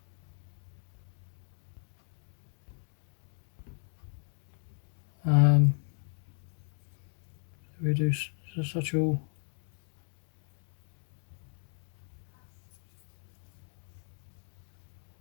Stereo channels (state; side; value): silent; right; 54 dB below the other